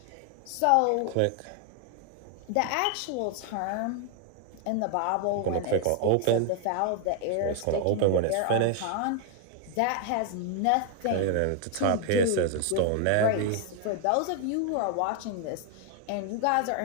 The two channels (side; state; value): both; different; correlation 0.00